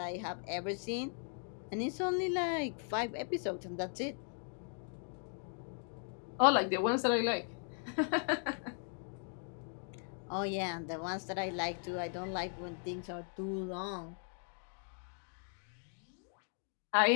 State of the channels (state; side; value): silent; right; 52 dB below the other